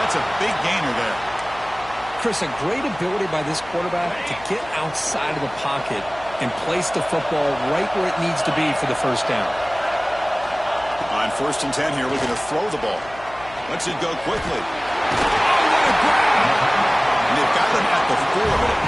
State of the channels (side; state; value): left; noise; hum, 19 dB below the sound